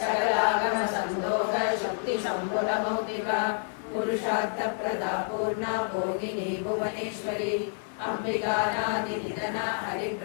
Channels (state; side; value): silent; right; 59 dB below the other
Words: संदोष शक्ति संबुल मौक्तिका पुरुषार्थ प्रदा पूर्णा भोगिनी भुवनेश्वरी अंबिकानादि निधना हरि